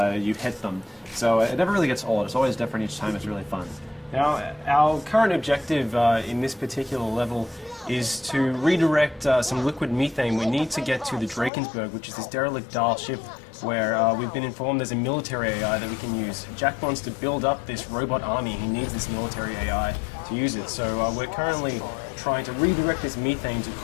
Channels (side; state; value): right; drops out; at 11.5 s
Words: you hit them. So it never really gets old. It's always different each time. It's really fun. Now, our current objective in this particular level is to redirect some liquid methane. We need to get to the Drakensberg, which is this derelict Dahl ship where we've been informed there's a military AI that we can use. Jack wants to build up this robot army. He needs this military AI to use it. So we're currently trying to redirect this methane to